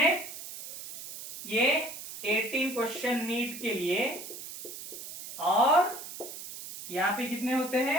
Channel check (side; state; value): right; noise; hiss, 11 dB below the sound